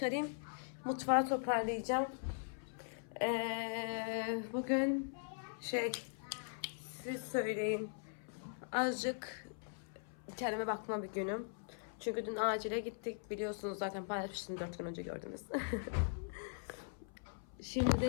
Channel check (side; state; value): right; silent; 51 dB below the other